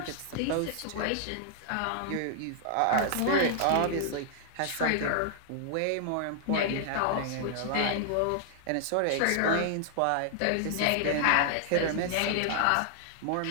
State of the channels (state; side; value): different; both; correlation 0.00